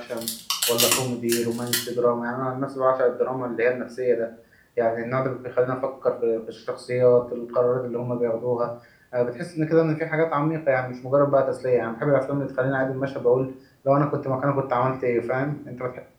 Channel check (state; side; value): identical; both; correlation 1.00